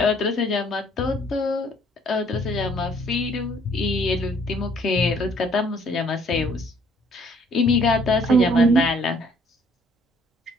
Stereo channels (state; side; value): normal; both; correlation 0.61